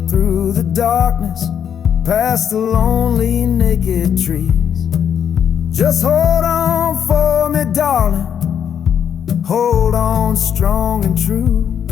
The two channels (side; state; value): right; quieter; 8.4 dB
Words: through the darkness, past the lonely naked trees. Just hold on for me, darling, hold on strong and true.